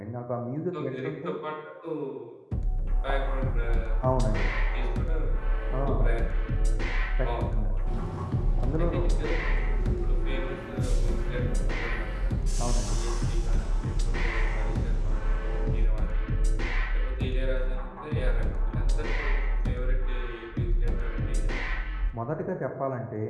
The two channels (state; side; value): identical; both; correlation 1.00